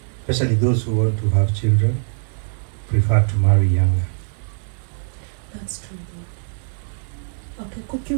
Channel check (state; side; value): silent; left; digital silence